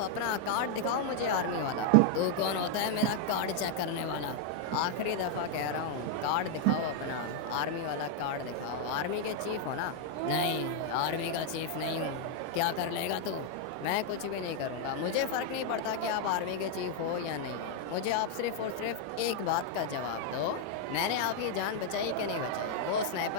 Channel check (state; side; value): different; both; correlation 0.00